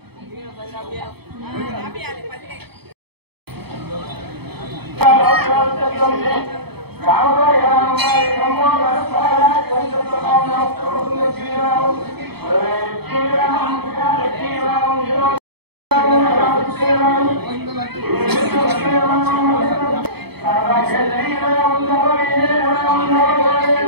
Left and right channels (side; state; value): left; late; 0.97 ms